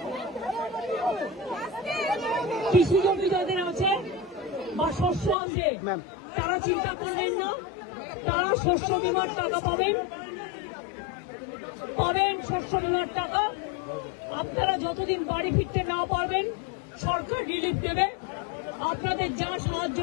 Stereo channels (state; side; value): drops out; right; at 5.4 s